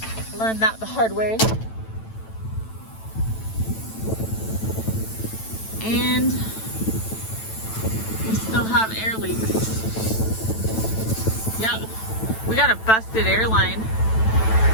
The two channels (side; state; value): right; late; 9.0 ms